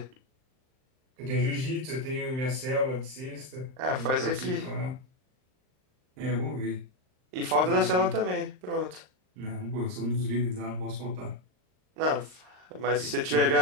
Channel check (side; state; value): left; late; 39 ms